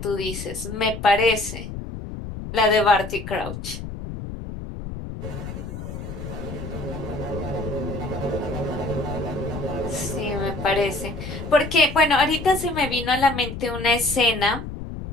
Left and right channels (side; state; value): left; noise; rumble, 8 dB below the sound